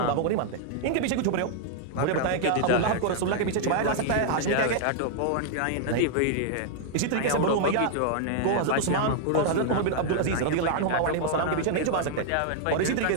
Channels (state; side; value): different; both; correlation -0.01